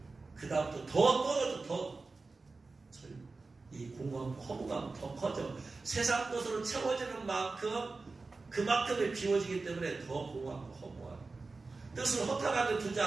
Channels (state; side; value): quieter; left; 3.8 dB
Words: 그 다음부터 더 떨어져. 이 공허함, 허무감 더 커져. 세상 것으로 채워지는 만큼 그만큼에 비워지기 때문에 더 공허하고 허무함. 뜻을 허탄하게 두지